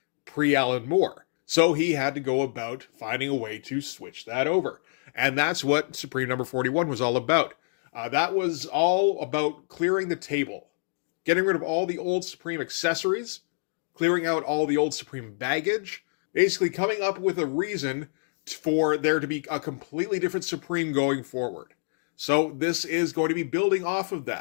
pre-Alan Moore. So he had to go about finding a way to switch that over. And that's what Supreme number 41 was all about. That was all about clearing the table, getting rid of all the old Supreme accessories, clearing out all the old Supreme baggage, basically coming up with a reason for there to be a completely different Supreme going forward. So this is going to be building off of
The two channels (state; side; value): silent; right; digital silence